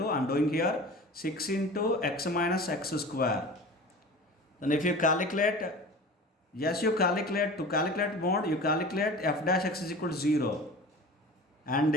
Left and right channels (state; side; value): normal; both; correlation 0.37